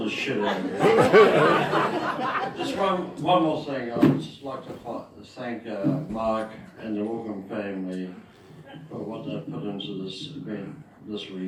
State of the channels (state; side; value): identical; both; correlation 1.00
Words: this shit on you. Just one more thing. I would just like to thank Mark and the Wilkham family for what they've put into this event this